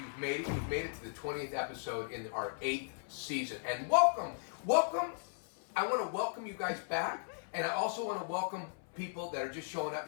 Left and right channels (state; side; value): silent; right; 53 dB below the other